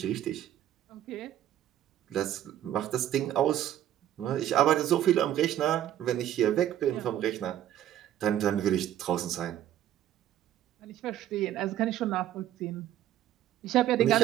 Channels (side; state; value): left; quieter; 11.9 dB